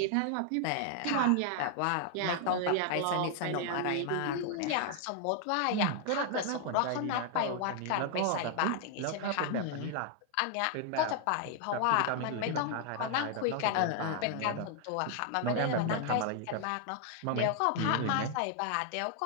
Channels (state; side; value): different; both; correlation 0.00